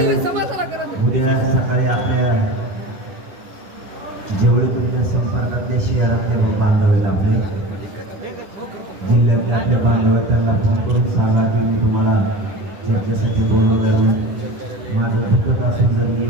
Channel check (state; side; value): late; left; 10 ms